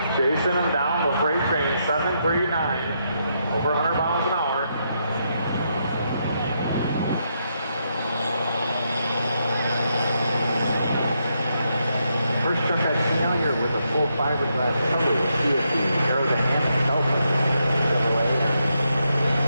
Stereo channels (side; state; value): both; inverted; correlation -0.80